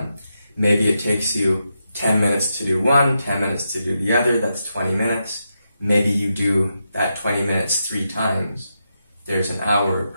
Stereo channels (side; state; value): both; inverted; correlation -0.85